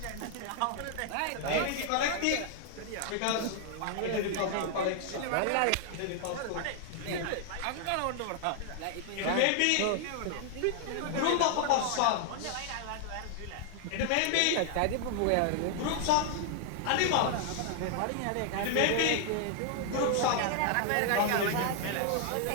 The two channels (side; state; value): both; different; correlation 0.00